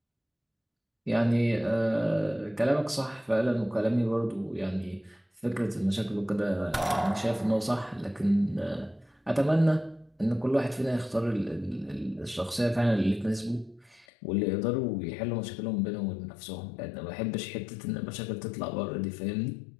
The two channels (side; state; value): right; drops out; at 14.1 s